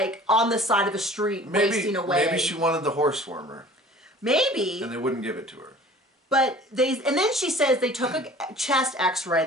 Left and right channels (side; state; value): both; normal; correlation 0.46